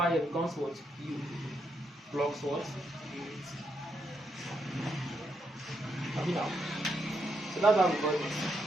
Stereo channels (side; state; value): both; normal; correlation 0.79